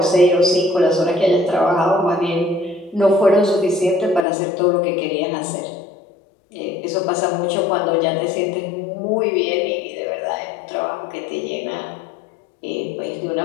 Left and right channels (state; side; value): drops out; right; at 4.2 s